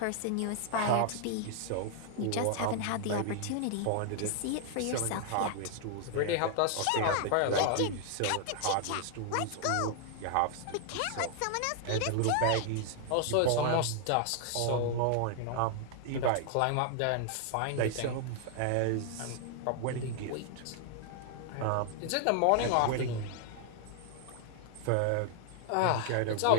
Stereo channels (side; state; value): both; different; correlation 0.00